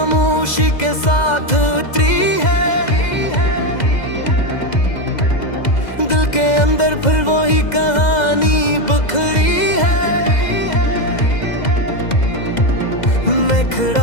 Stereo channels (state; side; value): late; right; 2.0 ms